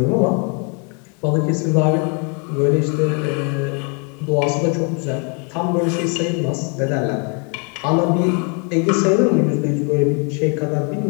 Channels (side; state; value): right; quieter; 36.9 dB